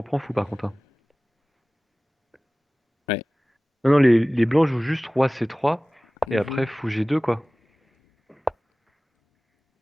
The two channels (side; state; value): both; normal; correlation 0.98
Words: prends fou, par contre, hein. Ouais. Non, non, les blancs jouent juste roi C3, et Mhm. après fou G2, quoi.